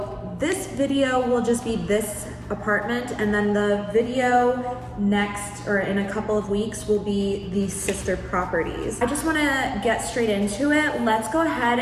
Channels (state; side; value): identical; both; correlation 1.00